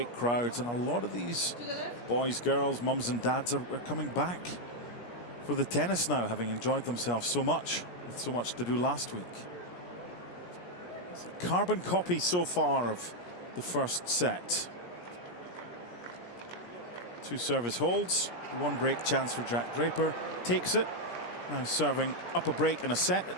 crowds, and a lot of these boys, girls, mums and dads are coming back for the tennis now, having enjoyed themselves so much with so much to do last week. It's a carbon copy so far of the first set. 2 service holds, 1 break chance for Jack Draper, takes it, now serving up a break and a set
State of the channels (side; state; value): right; late; 17 ms